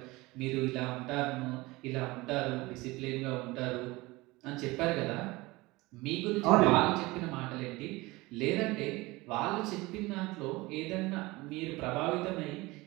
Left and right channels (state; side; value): quieter; left; 21.6 dB